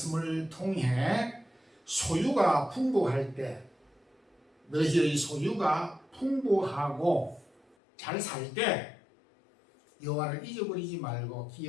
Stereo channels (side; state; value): right; drops out; at 7.8 s